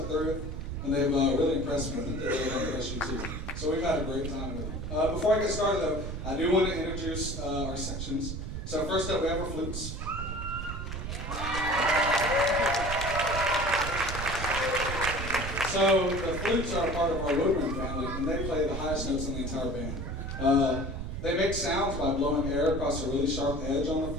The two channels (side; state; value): right; noise; rumble, 5 dB below the sound